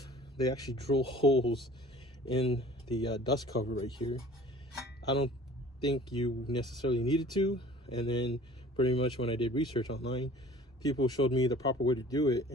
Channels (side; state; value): both; normal; correlation 0.48